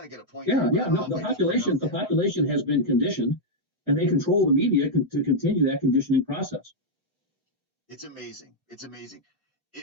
to get a point. Yeah. No, the population has been conditioned, and they control the media to continue that conditioning process. It's amazing.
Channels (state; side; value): normal; both; correlation -0.04